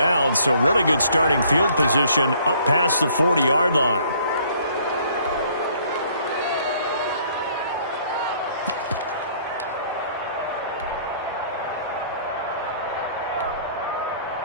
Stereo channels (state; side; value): inverted; both; correlation -0.60